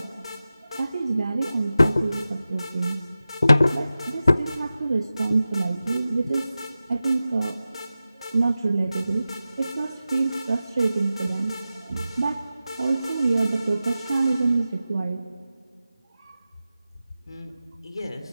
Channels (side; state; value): both; inverted; correlation -0.94